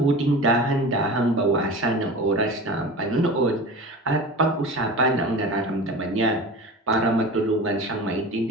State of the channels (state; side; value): normal; both; correlation 0.33